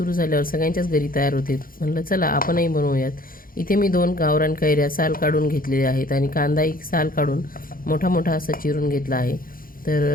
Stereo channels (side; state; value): right; late; 0.41 ms